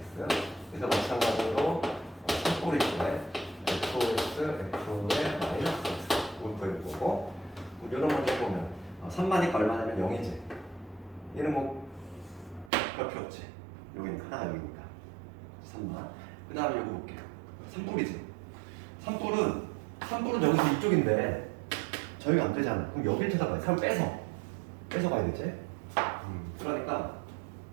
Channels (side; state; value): left; drops out; at 12.7 s